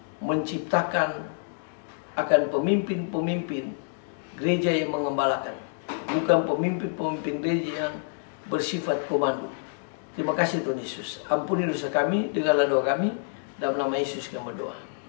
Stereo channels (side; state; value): right; silent; digital silence